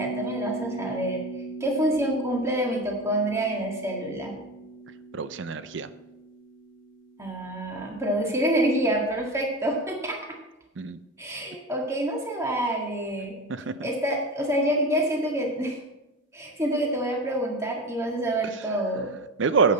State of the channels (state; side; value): normal; both; correlation 0.26